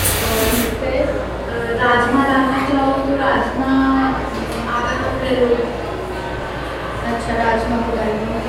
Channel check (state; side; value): identical; both; correlation 1.00